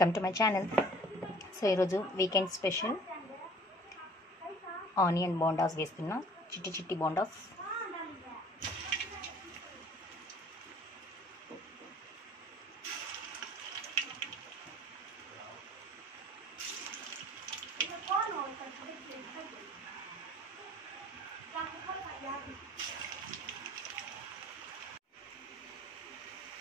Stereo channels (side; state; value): both; normal; correlation 0.51